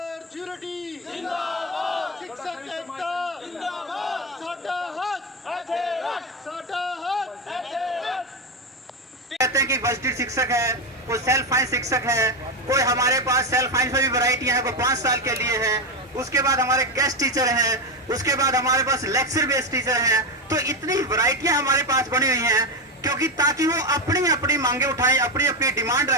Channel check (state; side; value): normal; both; correlation 0.11